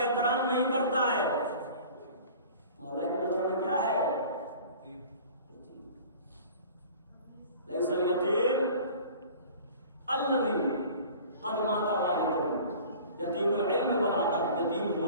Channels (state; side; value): inverted; both; correlation -0.44